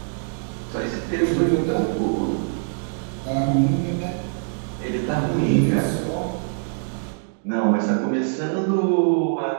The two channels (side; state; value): left; silent; 58 dB below the other